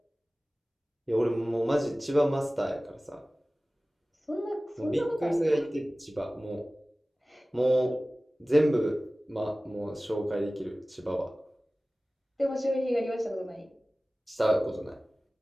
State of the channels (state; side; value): normal; both; correlation 0.97